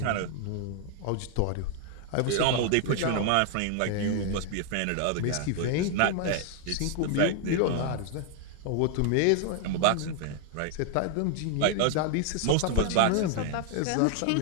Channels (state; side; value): different; both; correlation 0.00